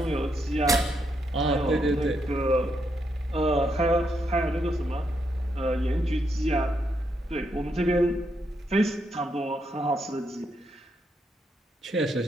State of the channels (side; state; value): both; normal; correlation 0.79